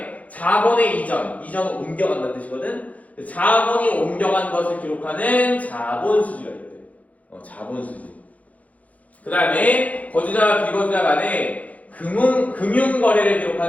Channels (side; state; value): right; late; 0.070 ms